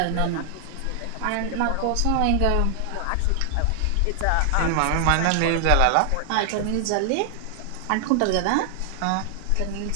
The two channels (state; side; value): different; both; correlation 0.00